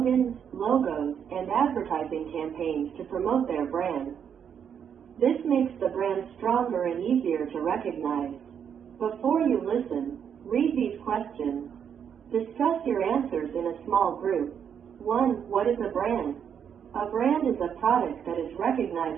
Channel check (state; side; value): quieter; left; 8.0 dB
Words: logos, and advertising campaigns to promote their brand. This makes the brand stronger and easier to recognize. Before you listen, read these questions. Discuss your answers in a small group. 1. What is a brand? A brand is a product that is